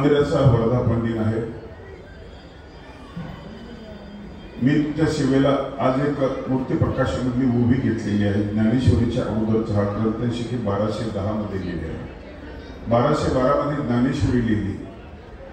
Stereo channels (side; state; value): both; identical; correlation 1.00